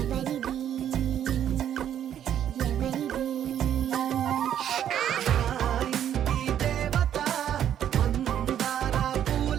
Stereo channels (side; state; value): left; quieter; 10.1 dB